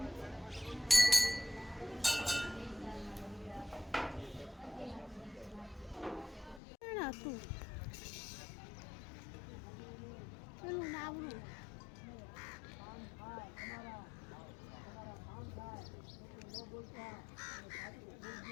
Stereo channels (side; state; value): right; drops out; at 6.6 s